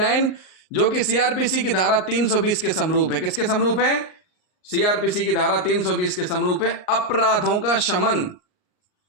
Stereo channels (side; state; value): right; late; 38 ms